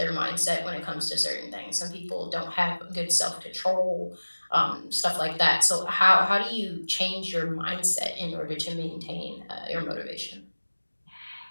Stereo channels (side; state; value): both; inverted; correlation -1.00